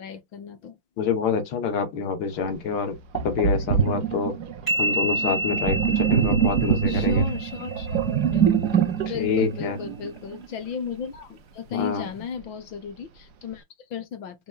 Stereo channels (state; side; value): late; right; 5.7 ms